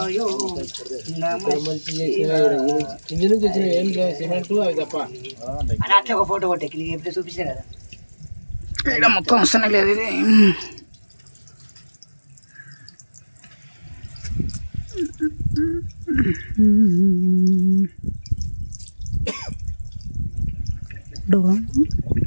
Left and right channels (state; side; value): inverted; both; correlation -1.00